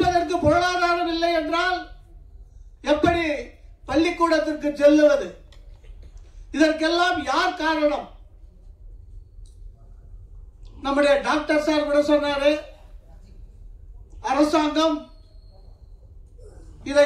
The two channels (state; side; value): identical; both; correlation 1.00